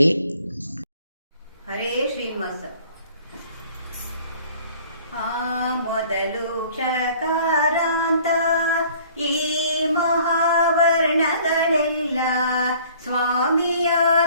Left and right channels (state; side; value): inverted; both; correlation -0.54